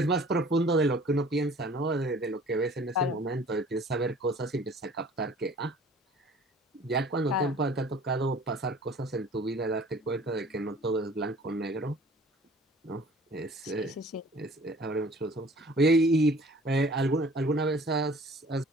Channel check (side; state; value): both; normal; correlation 0.50